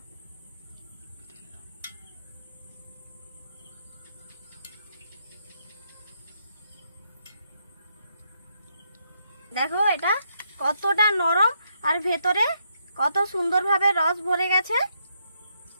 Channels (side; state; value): both; inverted; correlation -0.77